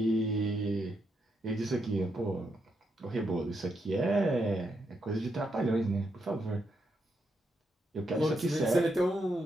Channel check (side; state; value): both; normal; correlation 0.81